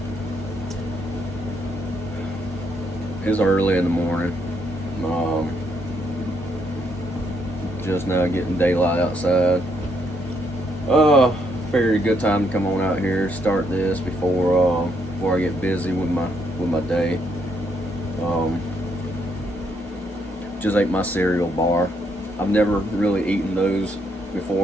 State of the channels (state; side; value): normal; both; correlation 0.74